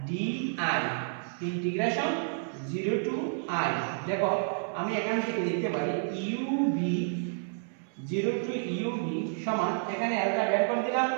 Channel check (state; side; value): silent; left; 58 dB below the other